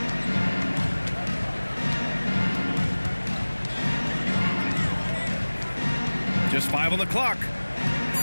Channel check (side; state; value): both; inverted; correlation -1.00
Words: Just 5 on the clock.